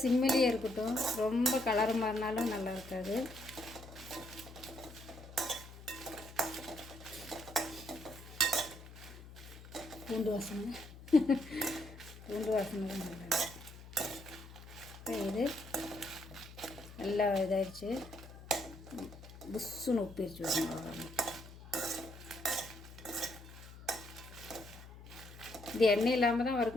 சிம்மிலேயே இருக்கட்டும். ரொம்ப கலர் மாறினாலும் நல்லா இருக்காது. பூண்டு வாசனை தான் நல்லா. இப்போ இது நல்லா இதாகிடுச்சு. புஷ்ஷுன்னு உப்பிரிச்சு விடணும். இது எண்ணெய் இல்லாமல் தான்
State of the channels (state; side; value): noise; left; hum, 16 dB below the sound